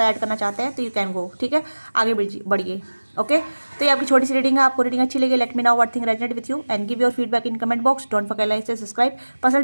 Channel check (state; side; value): inverted; both; correlation -1.00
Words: ऐड करना चाहते हैं, तो यू कैन गो, ठीक है, आगे बढ़िए। ओके, तो ये आपकी छोटी सी रीडिंग है। आपको रीडिंग अच्छी लगी, let me know what thing resonate with you and give your feedback in comment box. Don't forget like से सब्सक्राइब। पर्सनल